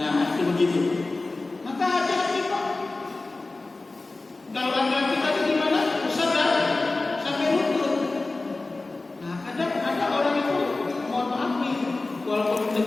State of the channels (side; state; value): right; quieter; 3.3 dB